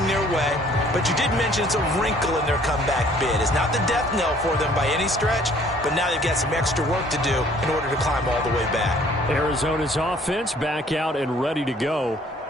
their way. But you did mention it's a wrinkle in their comeback bid. It's not the death knell for them by any stretch, but now they've got some extra work to do in order to climb all the way back. Arizona's offense back out and ready to go.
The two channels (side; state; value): both; normal; correlation 0.58